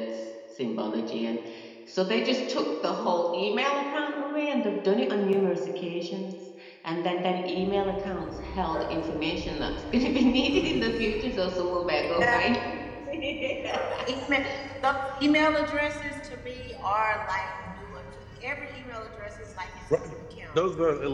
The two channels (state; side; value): identical; both; correlation 1.00